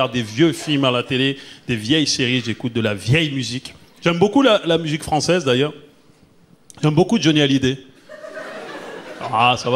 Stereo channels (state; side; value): identical; both; correlation 1.00